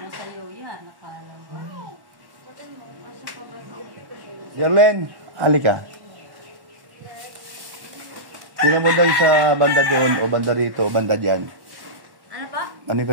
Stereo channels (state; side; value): late; left; 1.1 ms